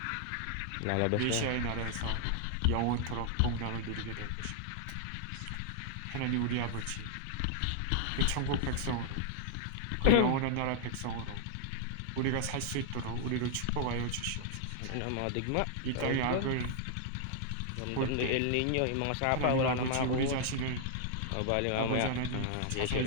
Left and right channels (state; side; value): different; both; correlation 0.00